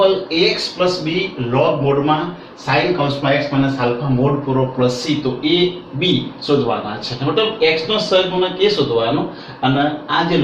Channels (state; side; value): identical; both; correlation 1.00